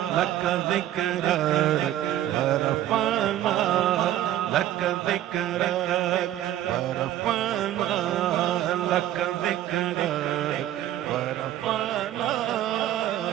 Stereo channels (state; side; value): quieter; left; 12.7 dB